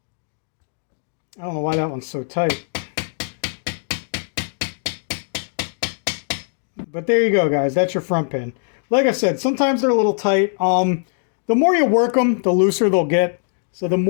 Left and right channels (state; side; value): silent; right; digital silence